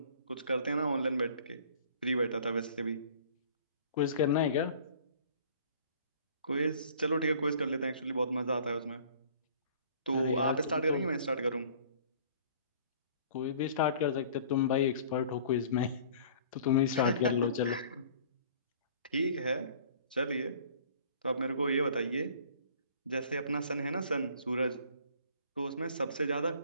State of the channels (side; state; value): both; inverted; correlation -0.51